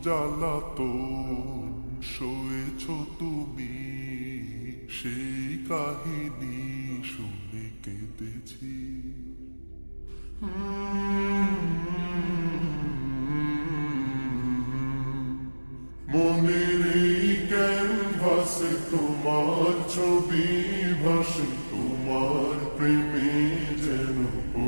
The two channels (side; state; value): both; inverted; correlation -1.00